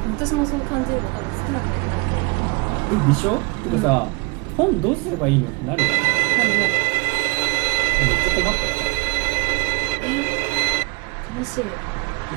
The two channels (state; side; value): quieter; left; 30.5 dB